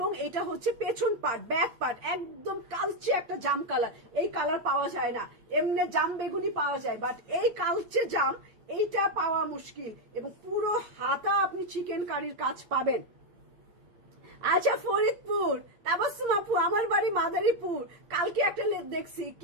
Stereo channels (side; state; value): left; late; 8.7 ms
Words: এটা হচ্ছে পেছন পার্ট, ব্যাক পার্ট একদম কালচে একটা জাম কালার। এই কালার পাওয়া যায় না, এমনি জাম বেগুনি পাওয়া যায়, বাট এই কালচে জাম এইটা পাওয়া মুশকিল। এবং পুরো হাতা আপনি চিকেন কারির কাজ পাবেন। আচ্ছা ফরিদপুর, তাবাসসুম আপু আমার বাড়ি মাদারীপুর। কালকে একটা দেখছি